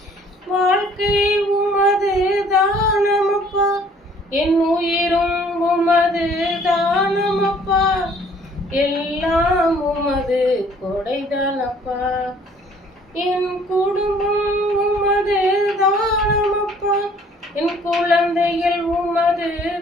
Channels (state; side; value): normal; both; correlation 0.57